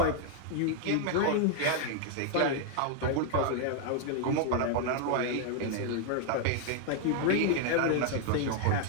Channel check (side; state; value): both; different; correlation 0.00